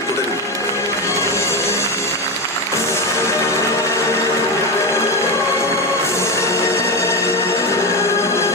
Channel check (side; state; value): both; normal; correlation 0.16